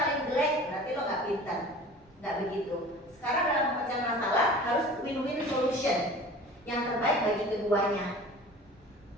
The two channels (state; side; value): normal; both; correlation 0.42